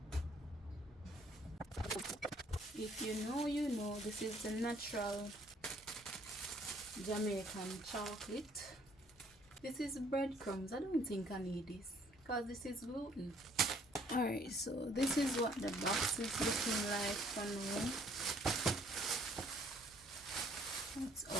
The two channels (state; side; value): normal; both; correlation 0.62